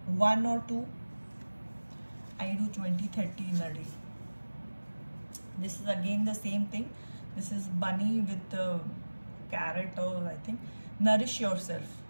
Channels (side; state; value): both; inverted; correlation -1.00